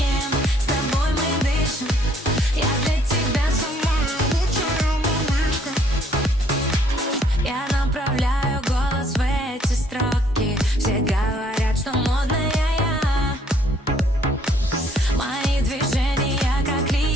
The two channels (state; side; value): normal; both; correlation 0.64